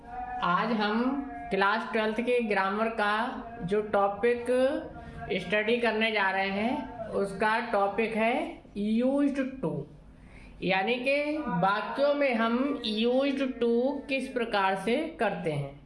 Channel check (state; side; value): identical; both; correlation 1.00